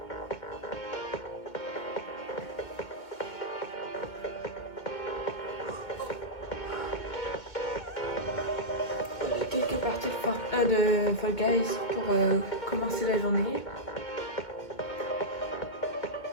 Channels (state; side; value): late; right; 2.2 ms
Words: Quelques parties de Fall Guys pour commencer la journée.